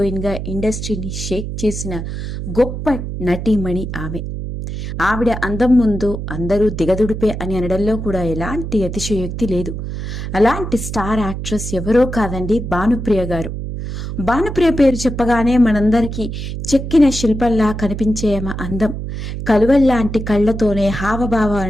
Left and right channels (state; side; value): noise; right; hum, 6 dB below the sound